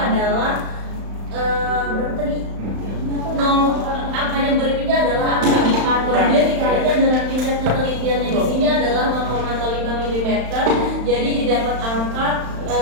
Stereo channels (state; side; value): late; left; 35 ms